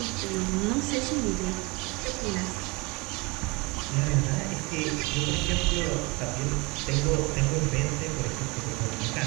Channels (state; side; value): quieter; left; 25.8 dB